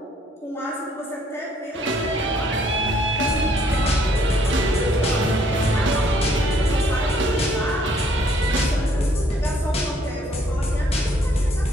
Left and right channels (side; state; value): both; normal; correlation 0.65